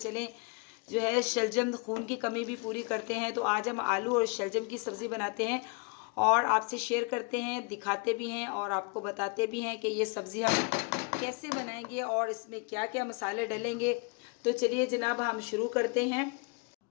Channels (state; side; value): quieter; right; 31.3 dB